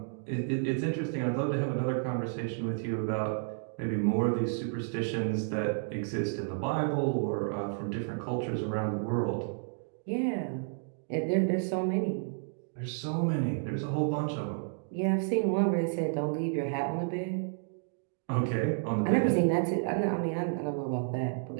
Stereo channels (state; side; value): silent; left; digital silence